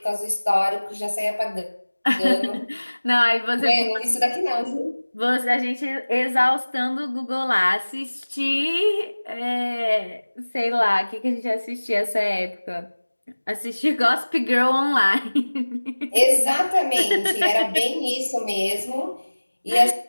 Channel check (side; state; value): both; inverted; correlation -1.00